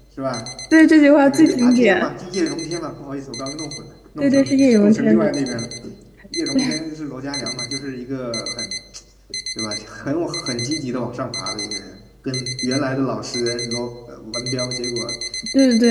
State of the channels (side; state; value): both; identical; correlation 1.00